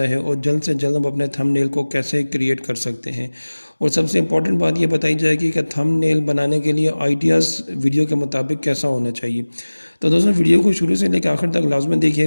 है और जल्द से जल्द हम अपने थंबनेल को कैसे क्रिएट कर सकते हैं। और सबसे इम्पॉर्टेंट बात ये बताई जाएगी कि थंबनेल बनाने के लिए आइडियाज़ वीडियो के मुताबिक कैसा होना चाहिए। तो दोस्तों, वीडियो को शुरू से लेकर आखिर तक लाजमी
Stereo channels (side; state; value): both; inverted; correlation -1.00